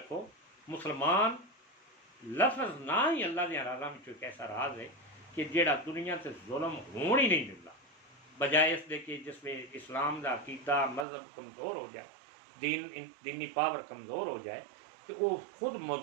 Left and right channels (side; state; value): left; drops out; at 11.1 s